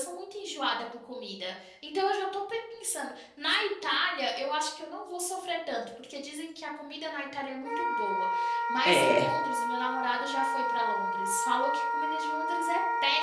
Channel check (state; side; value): identical; both; correlation 1.00